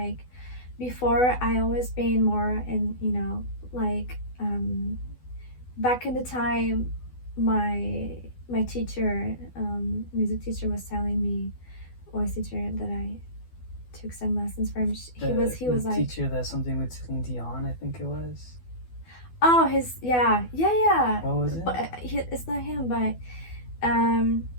before I always been more in, like, back in the time, my teacher, music teacher, was telling me, voice teacher that I took some lessons from. He was like, teacher that's something with Celine Dion, I think it was. Oh, yeah. What was it? But it's not him, but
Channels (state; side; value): late; right; 12 ms